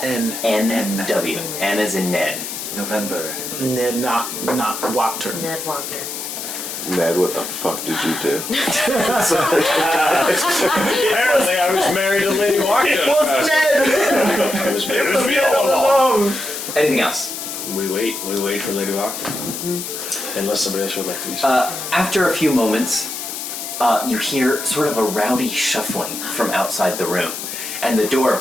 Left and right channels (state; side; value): noise; left; hiss, 7 dB below the sound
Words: N-W. N as in Ned. November. Ned not Wachter. Ned Wachter. Ned, what the fuck did you do? Apparently, I was married to Lady Wachter. Ned? It was me all along. Anything else? We wait for Lady Wachter. Unless somebody else would like to do something. After a few moments, you hear sort of a rowdy shuffling from outside the room. And the